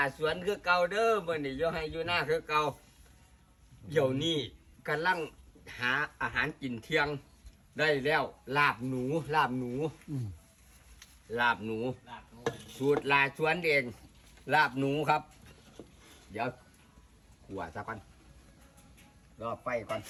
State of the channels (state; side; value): identical; both; correlation 1.00